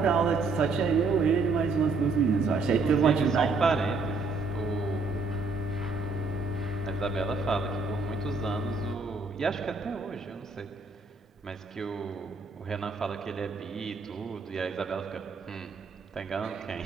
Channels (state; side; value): quieter; left; 4.0 dB